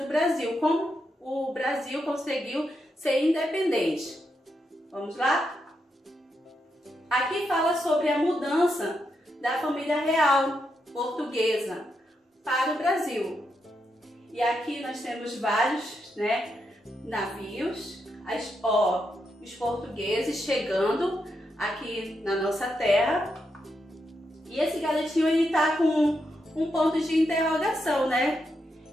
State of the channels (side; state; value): both; normal; correlation 0.83